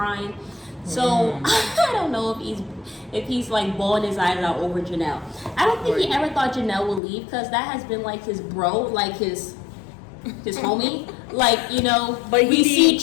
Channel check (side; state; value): right; drops out; at 7.0 s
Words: So I don't know if he's like bawling his eyes out over Janelle. I don't think he ever thought Janelle would leave, because that has been like his bro, like his homie. Like, you know, but we see